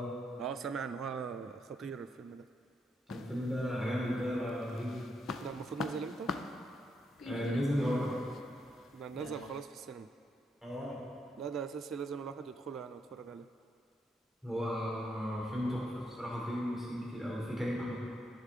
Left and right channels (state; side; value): normal; both; correlation 0.78